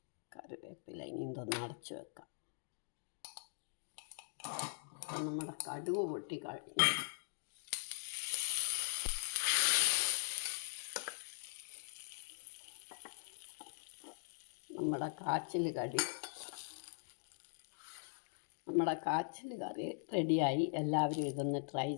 കറിവേപ്പില ഇനി ഇതൊന്ന് അടച്ച് വെക്കാം. നമ്മുടെ കടുക് പൊട്ടി കഴിഞ്ഞു. നമ്മുടെ കാച്ചിൽ കറി റെഡിയായി. എല്ലാവരും ഇതൊന്ന് ട്രൈ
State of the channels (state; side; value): silent; right; digital silence